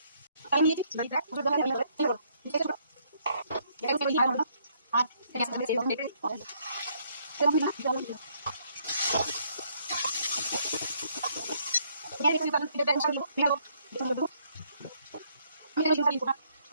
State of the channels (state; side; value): inverted; both; correlation -0.69